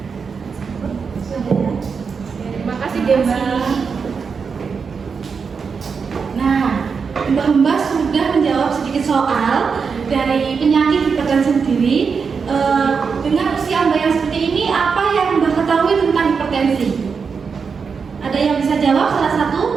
Terima kasih Mbak. Nah, Mbak sudah menjawab sedikit soal dari penyakit hipertensi sendiri. Dengan usia Mbak yang seperti ini, apa yang Mbak ketahui tentang hipertensi? Ada yang bisa jawab salah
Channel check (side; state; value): left; quieter; 5.7 dB